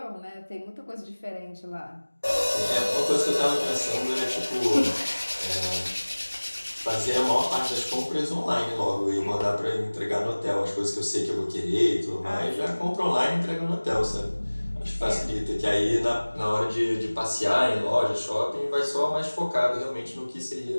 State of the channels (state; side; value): inverted; both; correlation -1.00